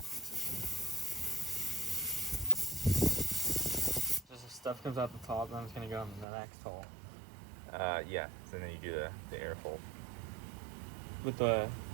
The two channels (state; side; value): drops out; left; at 6.2 s